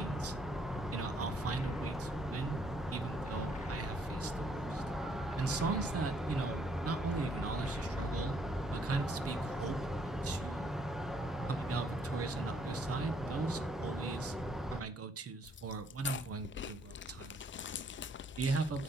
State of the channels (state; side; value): normal; both; correlation 0.68